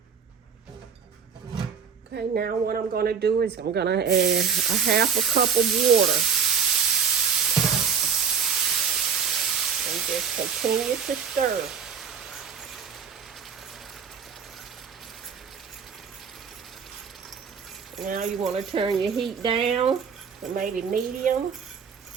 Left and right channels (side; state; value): left; quieter; 6.6 dB